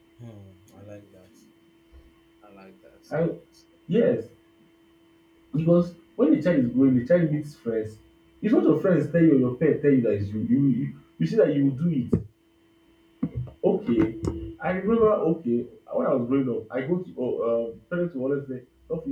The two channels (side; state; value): both; identical; correlation 1.00